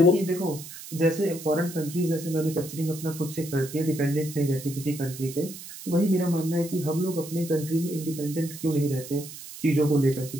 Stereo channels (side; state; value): right; noise; hiss, 13 dB below the sound